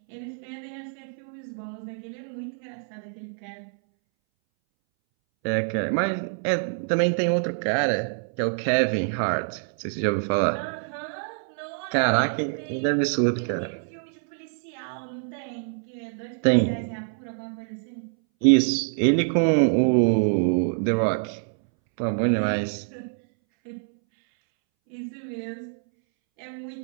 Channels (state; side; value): silent; left; 61 dB below the other